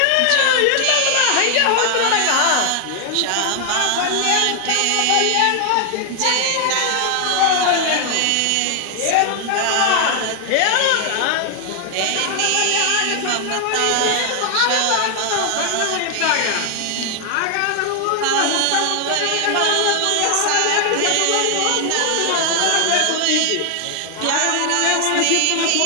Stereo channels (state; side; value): different; both; correlation 0.00